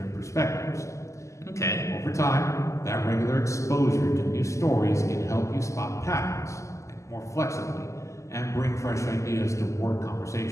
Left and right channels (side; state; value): right; late; 0.15 ms